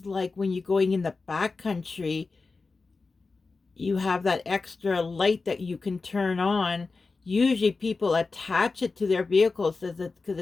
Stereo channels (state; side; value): quieter; right; 4.0 dB